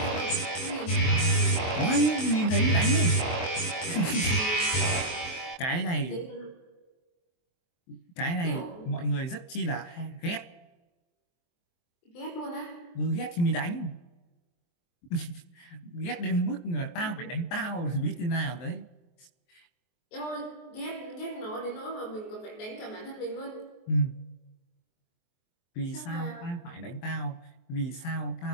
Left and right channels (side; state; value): right; late; 23 ms